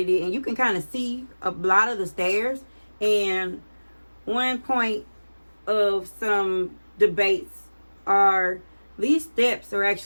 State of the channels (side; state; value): both; inverted; correlation -1.00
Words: it, and you can kind of see a lot of the stairs. And one point of some debates are these steps are